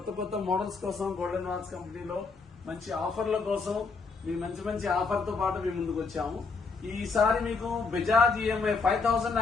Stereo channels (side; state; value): right; quieter; 4.5 dB